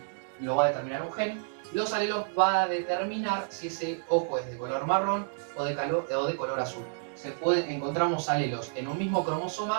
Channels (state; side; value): silent; left; digital silence